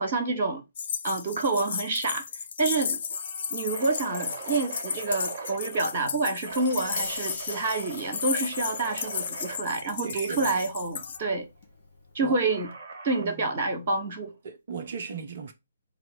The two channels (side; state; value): both; inverted; correlation -0.53